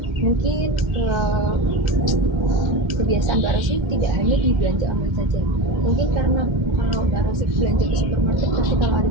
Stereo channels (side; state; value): left; late; 2.1 ms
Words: mungkin kebiasaan Mbak Rosi tidak hanya di belanja online saja. Mungkin karena kalau Mbak Rosi belanja ke supermarket, pasti kalau ada